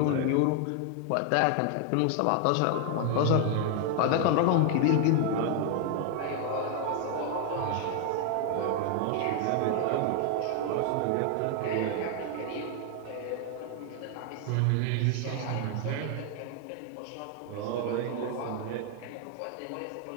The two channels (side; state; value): both; different; correlation 0.00